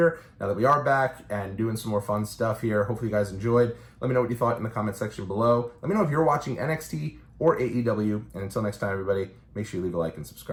now that we are back and doing some more fun stuff here. Hopefully you guys enjoyed. Let me know what you thought in the comment section below. Let me know if you're watching NXT or AEW. And until next time, everybody, make sure you leave a like and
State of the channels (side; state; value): both; identical; correlation 1.00